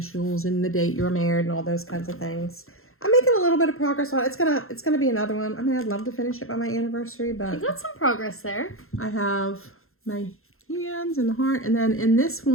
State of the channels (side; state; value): right; late; 0.61 ms